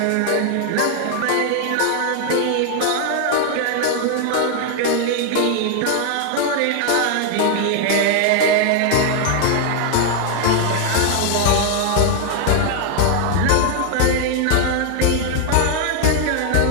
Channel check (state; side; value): different; both; correlation 0.00